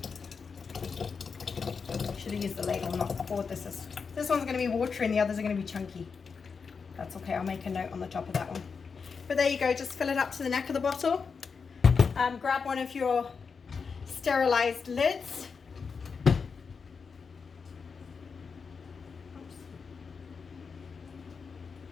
Should have used the ladle, not the board. This one's going to be watery and the others are going to be chunky. That's okay, I'll make a note on the top of that one. But there you go, just fill it up to the neck of the bottle. Grab one of your sterilized lids. Oops.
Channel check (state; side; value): quieter; right; 5.5 dB